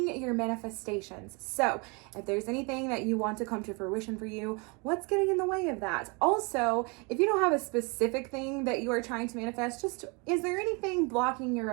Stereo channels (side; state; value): left; quieter; 30.6 dB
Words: your manifestations. So if there's anything that you want to come to fruition for you, what's getting in the way of that? Also, if you don't have a specific thing that you are trying to manifest, just is there anything blocking your